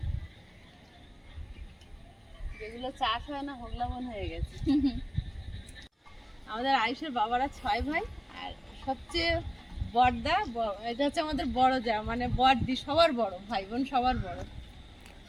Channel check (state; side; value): identical; both; correlation 1.00